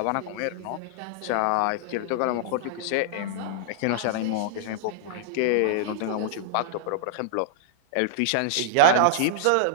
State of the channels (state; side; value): different; both; correlation -0.01